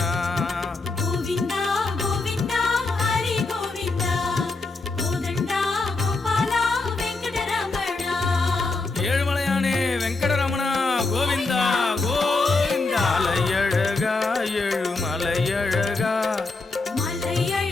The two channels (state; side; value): quieter; right; 3.6 dB